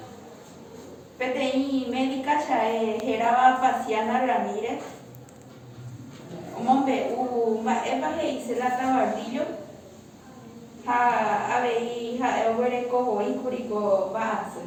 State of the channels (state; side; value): identical; both; correlation 1.00